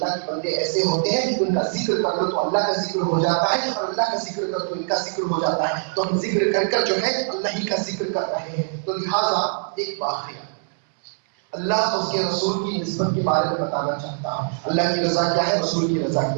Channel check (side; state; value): left; silent; 63 dB below the other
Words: کے بندے ایسے ہوتے ہیں ان کا ذکر کر لو تو اللہ کا ذکر ہو جاتا ہے، اور اللہ کا ذکر کرو تو ان کا ذکر ہو جاتا ہے. تو ہم ذکر کر کر جو ہے اللہ ہی کا ذکر کر رہے ہیں. تو لہٰذا ایک واقعہ اللہ اور اس کے رسول کی نسبت کے بارے میں بتانا چاہتا ہوں. اللہ کی رضا کیا ہے، رسول کی رضا